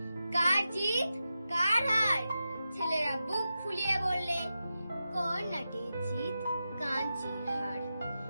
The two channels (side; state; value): both; inverted; correlation -0.91